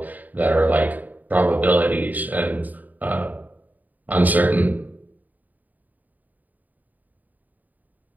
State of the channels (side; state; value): left; late; 0.081 ms